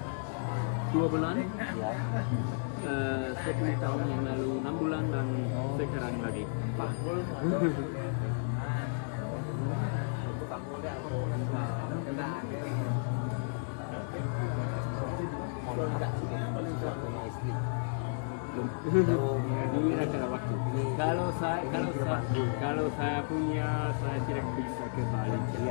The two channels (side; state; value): right; silent; digital silence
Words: 2 bulan. Ya. 10 tahun yang lalu 6 bulan dan sekarang lagi 4. Mohon maaf, suaminya istri. Ini karena waktu. Kalau saya punya, saya tidak bisa ke Bali.